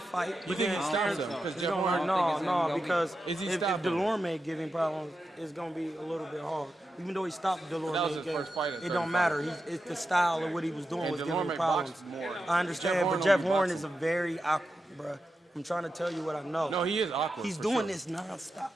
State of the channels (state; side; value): normal; both; correlation 0.89